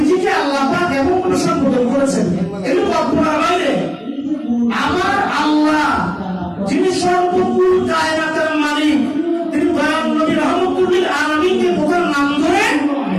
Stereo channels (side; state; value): both; identical; correlation 1.00